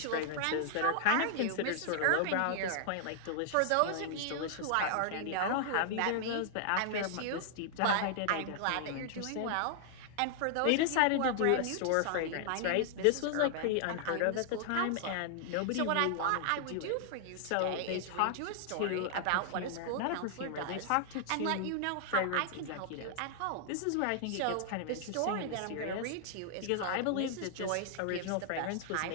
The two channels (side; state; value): both; different; correlation -0.01